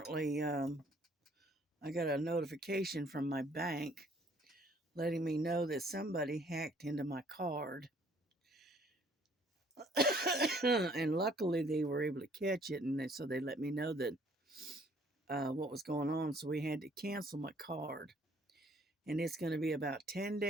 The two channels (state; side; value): normal; both; correlation 0.61